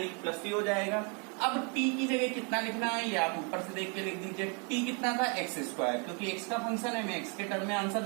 प्लस c हो जाएगा। अब t की जगह कितना लिखना है ये आप ऊपर से देख के लिख दीजिए। t कितना था x स्क्वायर, क्योंकि x का फंक्शन है, हमें x के टर्म में आंसर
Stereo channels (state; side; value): quieter; left; 35.6 dB